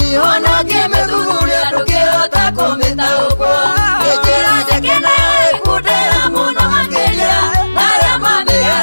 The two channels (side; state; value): both; inverted; correlation -1.00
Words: ona ngimithuguria ndukihota kumitaukwo njira njekena ikundira muno makiria naria